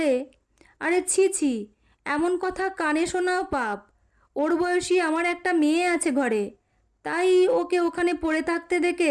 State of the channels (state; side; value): identical; both; correlation 1.00